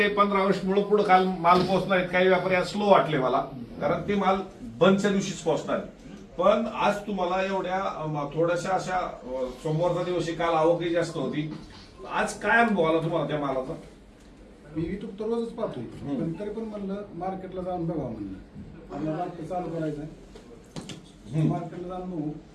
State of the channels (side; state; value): both; identical; correlation 1.00